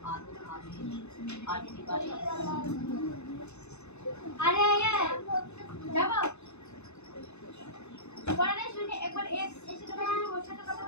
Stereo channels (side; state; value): right; late; 0.81 ms